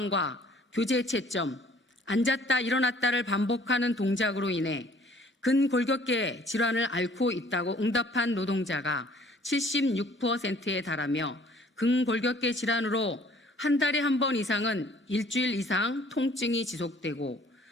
교재 채점, 앉았다 일어났다를 반복하는 동작으로 인해 근골격계 질환을 앓고 있다고 응답한 노동자가 76%에 달하며 근골격계 질환으로 한 달에 한 번 이상은 일주일 이상 통증이 지속되고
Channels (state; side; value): normal; both; correlation 0.56